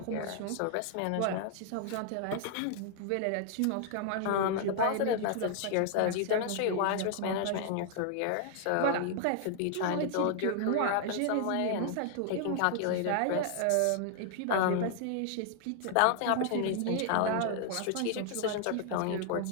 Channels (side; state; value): both; different; correlation 0.00